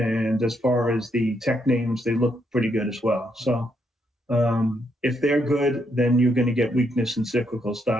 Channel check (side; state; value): both; normal; correlation 0.77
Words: as far as the tech names, they look pretty good as well. So if they're good, then you're going to get weakness in cyclical